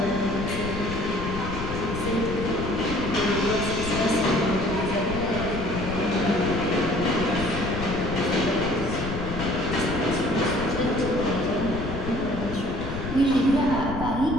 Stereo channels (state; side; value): noise; left; rumble, 7 dB below the sound